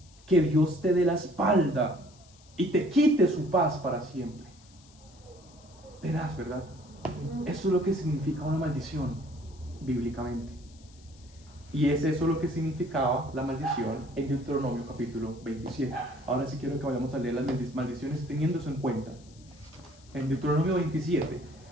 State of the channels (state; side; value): noise; left; hiss, 26 dB below the sound